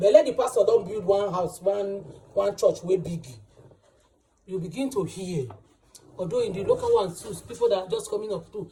let the pastor don't build one house, one church way big. You begin to hear. Although in the local ones too, people that are just coming up too,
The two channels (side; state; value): both; identical; correlation 1.00